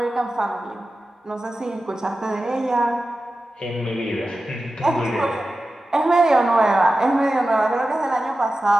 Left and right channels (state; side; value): normal; both; correlation 0.93